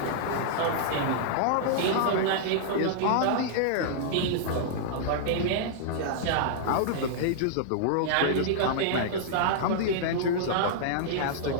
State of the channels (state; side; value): different; both; correlation -0.02